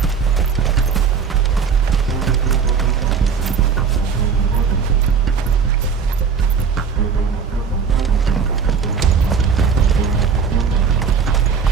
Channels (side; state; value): left; quieter; 6.0 dB